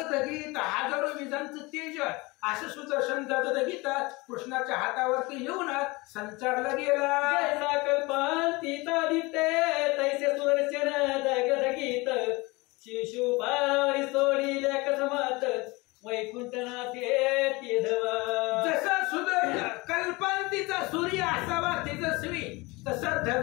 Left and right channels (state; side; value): quieter; right; 24.0 dB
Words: हजारो विजांचं तेज असं सुदर्शन दगदगीत कृष्णाच्या हातावरती येऊन संचारलं गेलं. जैसा कल्पांतीता दिसते तैसे सुदर्शन दगदगीत शिशुपाळावरी सोडिले कसमात वैकुंठनाथे तेजवा. जसं कल्पांतीचा सूर्य असावा तेजस्वी, तसं